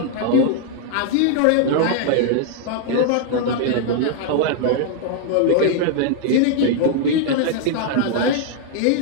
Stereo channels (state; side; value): different; both; correlation 0.00